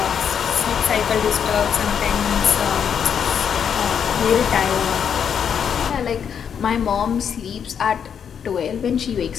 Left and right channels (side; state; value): right; quieter; 7.7 dB